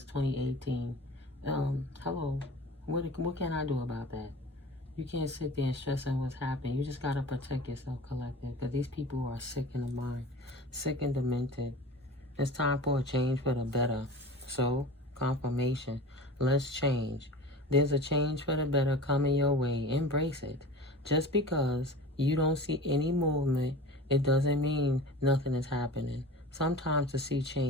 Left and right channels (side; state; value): both; normal; correlation 0.36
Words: 2018, hello, what can I do about that? You can't sit there and stress on what's happening. You just got to protect yourself, collective, because these people are sick in the mind, sick and demented. It's time for a change for the better. So, confirmation. Let's change. There's a change for the better coming your way. Embrace it. Just because you don't see any movement, it doesn't mean nothing is happening. Sometimes to see